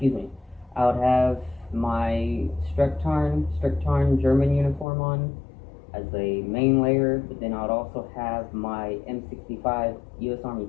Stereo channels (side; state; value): right; drops out; at 4.9 s